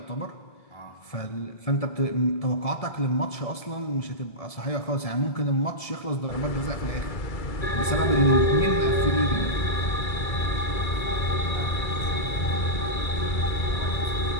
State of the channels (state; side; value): late; right; 1.7 ms